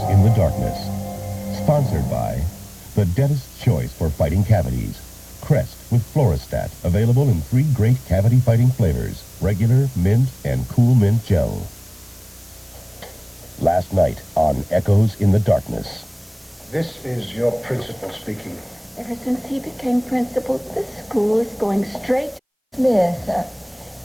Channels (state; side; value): identical; both; correlation 1.00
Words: in the Darkness. Sponsored by the dentist's choice for fighting cavities. Crest with Floristat, available in 3 great cavity-fighting flavors, regular, mint, and cool mint gel. Last night on Echoes in the Darkness. This is your principal speaking. Ever since he became principal, this school is going straight. Smith,